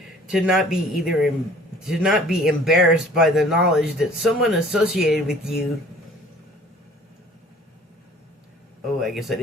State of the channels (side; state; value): both; normal; correlation 0.51